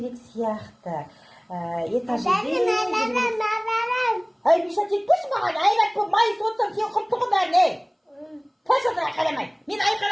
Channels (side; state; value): both; identical; correlation 1.00